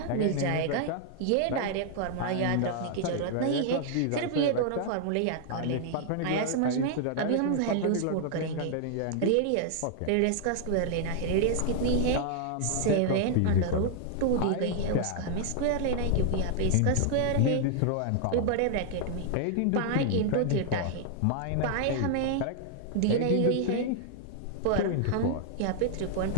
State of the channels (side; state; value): both; different; correlation 0.00